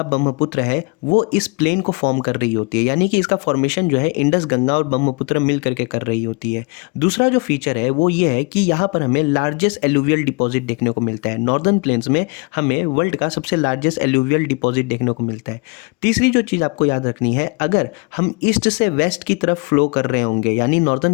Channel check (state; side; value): quieter; right; 30.8 dB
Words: ब्रह्मपुत्र है वो इस प्लेन को फॉर्म कर रही होती है, यानी कि इसका फॉर्मेशन जो है इंडस गंगा और ब्रह्मपुत्र मिल करके कर रही होती है। दूसरा जो फीचर है वो ये है कि यहाँ पर हमें लार्जेस्ट एलुवियल डिपॉजिट देखने को मिलता है। नॉर्दर्न प्लेन्स में हमें वर्ल्ड का सबसे लार्जेस्ट एलुवियल डिपॉजिट देखने को मिलता है। तीसरी जो चीज़ आपको याद रखनी है, अगर हम ईस्ट से वेस्ट की तरफ फ्लो कर रहे होंगे, यानी